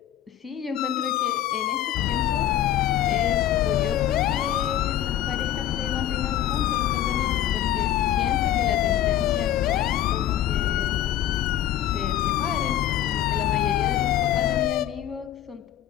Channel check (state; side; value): quieter; right; 11.8 dB